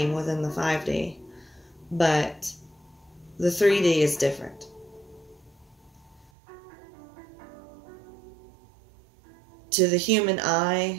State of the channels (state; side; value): drops out; left; at 6.3 s